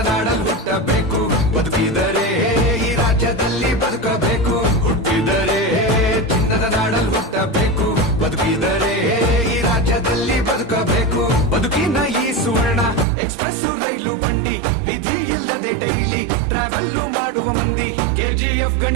ಹುಟ್ಟಬೇಕು, ಬದುಕಿದರೆ ಈ ರಾಜ್ಯದಲ್ಲಿ ಬದುಕಬೇಕು. ಹುಟ್ಟಿದರೆ ಚಿನ್ನದ ನಾಡಲ್ಲಿ ಹುಟ್ಟಬೇಕು, ಬದುಕಿದರೆ ಈ ರಾಜ್ಯದಲ್ಲಿ ಬದುಕಬೇಕು. ಬದುಕಿನ ಈ ಸುವರ್ಣ ಎಕ್ಸ್ಪ್ರೆಸ್ ರೈಲು ಬಂಡಿ, ವಿಧಿ ಇಲ್ಲದೆ ಡೈಲಿ ಟ್ರಾವೆಲ್ ಮಾಡುವ ಮಂದಿ. KGF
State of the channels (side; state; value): left; drops out; at 13.1 s